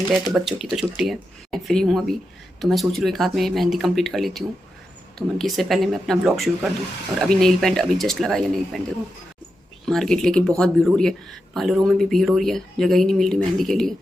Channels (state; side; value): normal; both; correlation 0.88